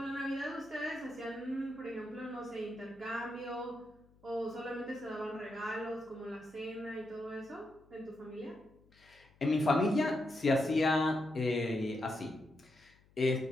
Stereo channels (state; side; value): noise; left; hum, 29 dB below the sound